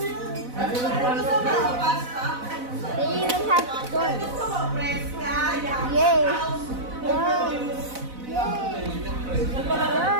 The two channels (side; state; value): left; late; 4.0 ms